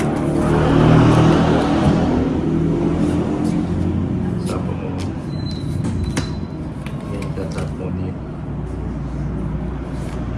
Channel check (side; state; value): both; identical; correlation 1.00